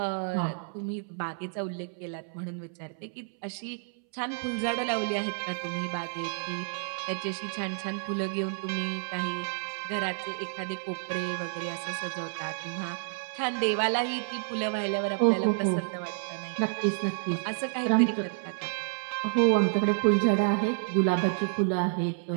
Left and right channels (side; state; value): left; silent; 58 dB below the other